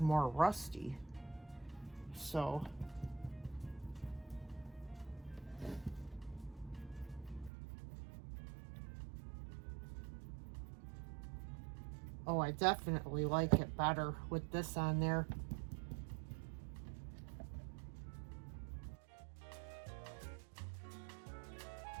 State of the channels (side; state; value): left; drops out; at 7.5 s